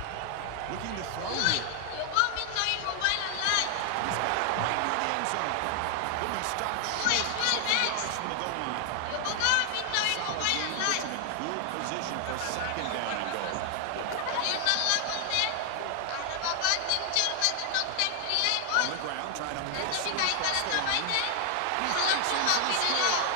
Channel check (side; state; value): both; different; correlation 0.00